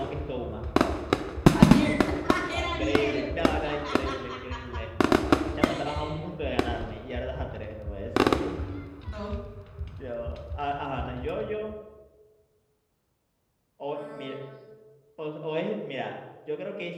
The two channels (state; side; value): identical; both; correlation 1.00